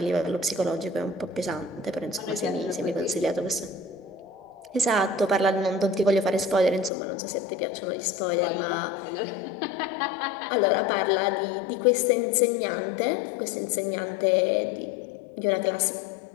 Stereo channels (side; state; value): right; drops out; at 6.9 s